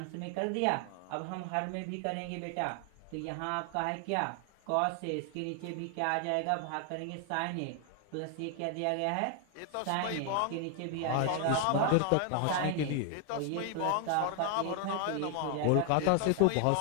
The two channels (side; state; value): both; different; correlation 0.00